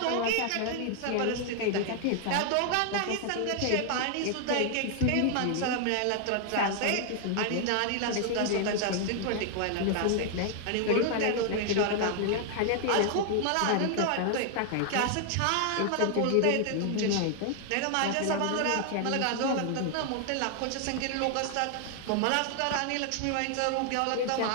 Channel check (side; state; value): both; different; correlation 0.00